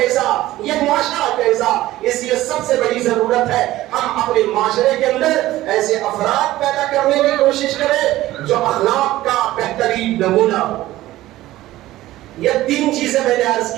یہ معاشرہ کیسا۔ اس لیے سب سے بڑی ضرورت ہے ہم اپنے معاشرے کے اندر ایسے افراد پیدا کرنے کی کوشش کریں جو اخلاق کا بہترین نمونہ ہو۔ یہ 3 چیزیں میں نے عرض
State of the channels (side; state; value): left; quieter; 16.0 dB